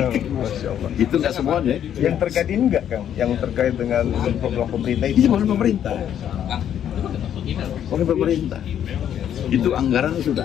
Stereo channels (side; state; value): right; quieter; 9.8 dB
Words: Itu nggak semuanya. Yang terkait ini enggak, Kang? Yang terkait dengan program pemerintah itu? Ini bukan pemerintah. Oleh pemerintah. Itu anggaran sudah